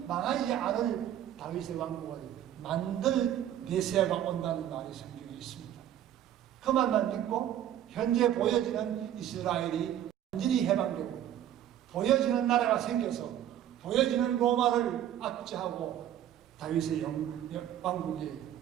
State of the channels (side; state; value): left; quieter; 11.2 dB